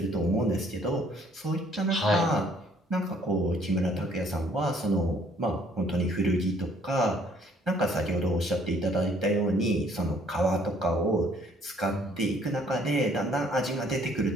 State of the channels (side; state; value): both; normal; correlation 0.62